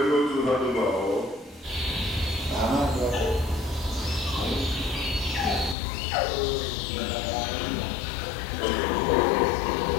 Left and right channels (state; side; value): drops out; right; at 5.8 s